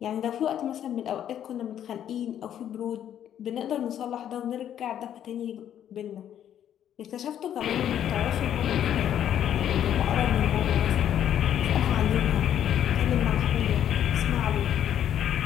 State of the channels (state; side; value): quieter; right; 10.2 dB